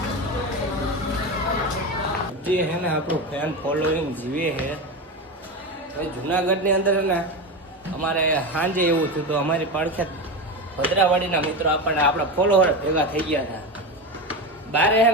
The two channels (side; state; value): both; normal; correlation 0.20